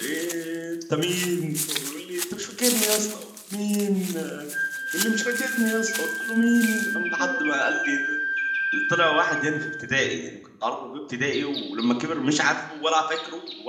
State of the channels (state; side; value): identical; both; correlation 1.00